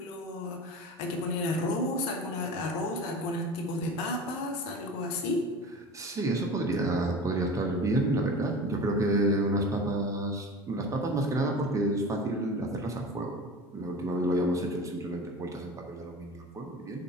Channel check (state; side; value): normal; both; correlation 0.34